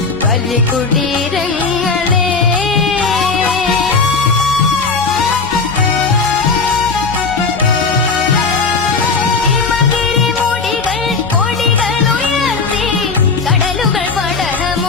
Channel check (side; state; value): right; quieter; 4.5 dB